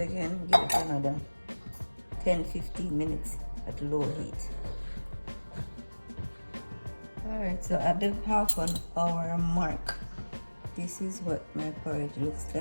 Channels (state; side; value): inverted; both; correlation -1.00